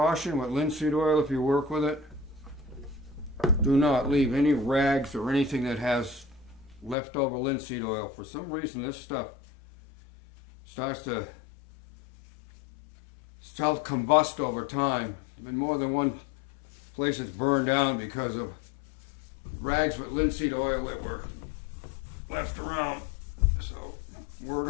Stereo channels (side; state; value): right; drops out; at 7.0 s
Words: with linseed oil: if you work with it, do not leave any rags or anything that has leftover linseed oil. For some reason, this stuff starts to self-combust over time. There's been more than one place that's burned down because of rags with linseed oil that were left around. So, word